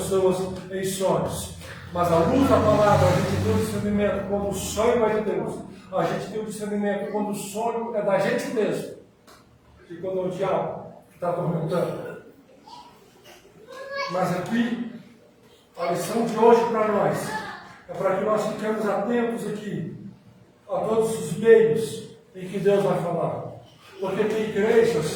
em sonhos. Mas a luz da palavra, a gente tem o discernimento quando o sonho é de Deus. A gente tem o discernimento quando o sonho é da gente mesmo. E quando é o diabo que está atormentando. Mas aqui, a lição de hoje para nós é para que nós fiquemos atentos aqui a todos os meios em que Deus vai falar. Porque tem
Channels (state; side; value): identical; both; correlation 1.00